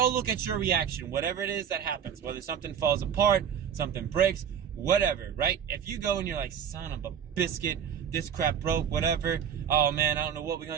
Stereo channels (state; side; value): quieter; left; 8.2 dB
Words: look at your reaction, whatever it is that happens, whether something falls apart, something breaks, whatever, right? If you go and you're like, son of a biscuit, this crap broke, whatever, oh man, I don't know what we're